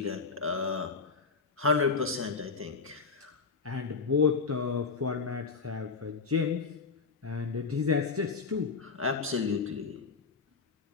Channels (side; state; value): right; quieter; 4.8 dB